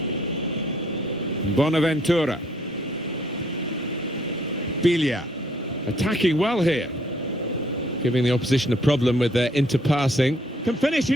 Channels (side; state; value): both; normal; correlation 0.65